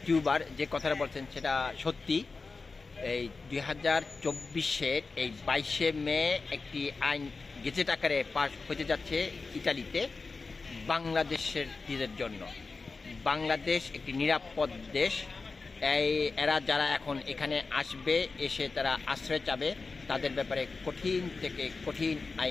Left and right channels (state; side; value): quieter; right; 4.1 dB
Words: টিউবার যে কথাটা বলছেন সেটা সত্যি। এই 2024-এর এই 22শে মে একটি আইন গেজেট আকারে পাস হতে যাচ্ছে ইতালিতে বাংলাদেশের জন্য। বাংলাদেশ একটি নিরাপদ দেশ। এরা যারা এখন এখানে আসবে, এসে তারা আশ্রয় চাবে, তাদের ব্যাপারে কঠিন থেকে কঠিন